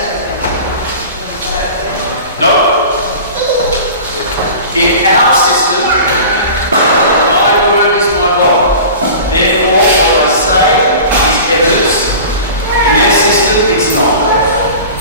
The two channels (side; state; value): both; inverted; correlation -0.38